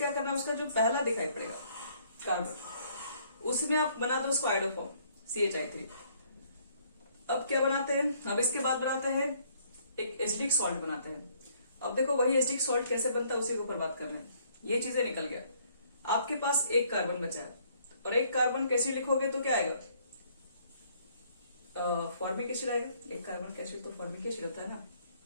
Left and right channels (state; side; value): inverted; both; correlation -0.64